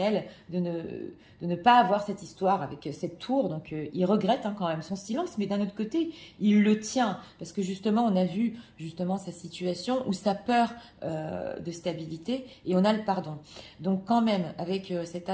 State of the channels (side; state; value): both; identical; correlation 1.00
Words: de ne pas avoir cette histoire avec cette tour. Donc, il regrette hein, quand même son silence. Mais d'un autre côté, il le tient. Parce que justement, on a vu justement sa situation ou sa peur de stabilité. Et on a le pardon. Donc, quand même, avec cet